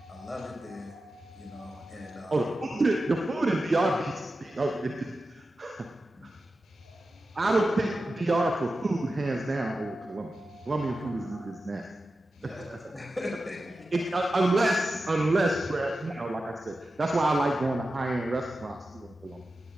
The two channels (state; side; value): normal; both; correlation 0.92